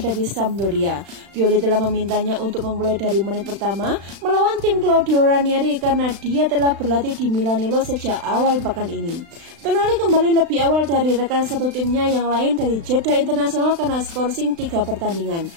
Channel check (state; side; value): late; left; 36 ms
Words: Sampdoria. Pioli telah memintanya untuk memulai dari menit pertama melawan tim Claudio Ranieri karena dia telah berlatih di Milanello sejak awal pekan ini. Tonali kembali lebih awal dari rekan satu timnya yang lain dari jeda internasional karena skorsing 3 pertandingan.